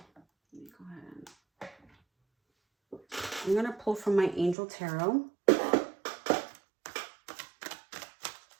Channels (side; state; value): left; drops out; at 4.5 s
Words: Let me go ahead. I'm going to pull from my Angel Tarot.